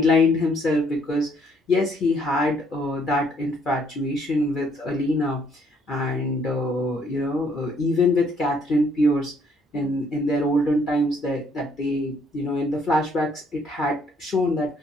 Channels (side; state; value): both; normal; correlation 0.66